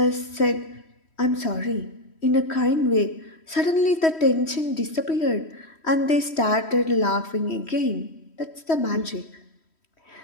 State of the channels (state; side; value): late; right; 3.1 ms